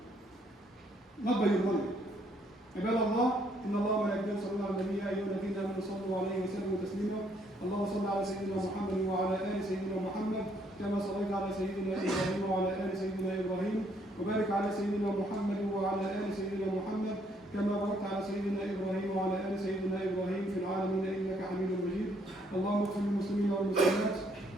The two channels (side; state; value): both; normal; correlation 0.68